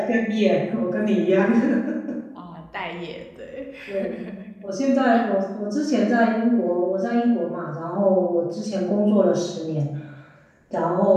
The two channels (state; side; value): identical; both; correlation 1.00